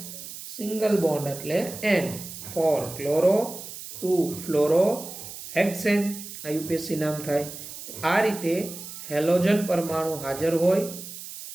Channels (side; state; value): right; noise; hiss, 11 dB below the sound